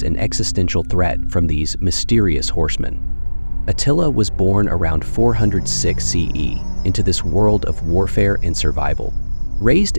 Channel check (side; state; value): both; inverted; correlation -1.00